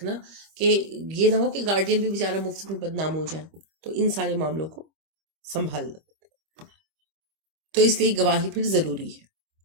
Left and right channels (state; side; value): late; left; 25 ms